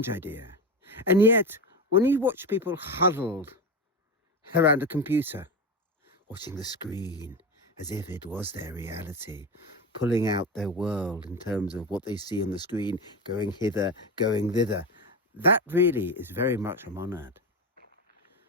idea. And yet, when you watch people huddled around a computer, watching the screen as if it was their reality, pulling out their world in terms of what they see on the screen, going hither, going thither. That really is very much a monad.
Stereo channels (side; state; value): both; normal; correlation 0.21